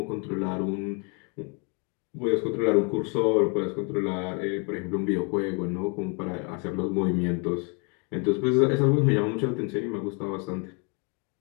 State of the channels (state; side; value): quieter; right; 34.6 dB